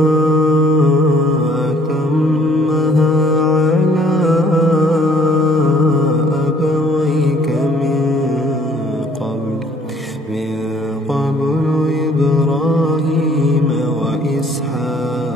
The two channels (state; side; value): normal; both; correlation 0.59